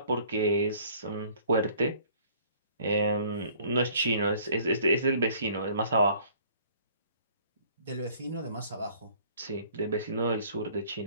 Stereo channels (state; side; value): inverted; both; correlation -0.56